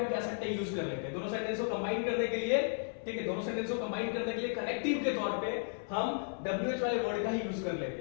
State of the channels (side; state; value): right; silent; 55 dB below the other